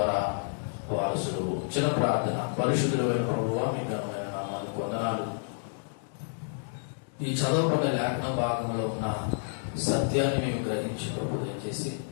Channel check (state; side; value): silent; right; digital silence